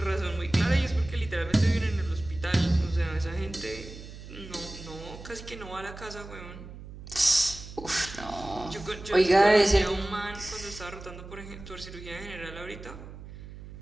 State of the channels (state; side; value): noise; right; hum, 14 dB below the sound